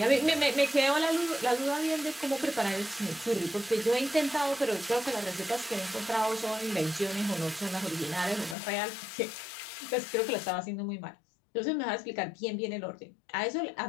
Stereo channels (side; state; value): right; drops out; at 8.6 s